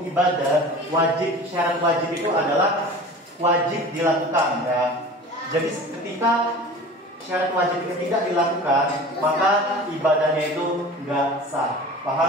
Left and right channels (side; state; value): both; normal; correlation 0.39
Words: ibadah, syarat wajib itu adalah wajib dilakukan ya. Jadi ketika syarat wajib itu tidak dilakukan, maka ibadahnya itu nggak sah.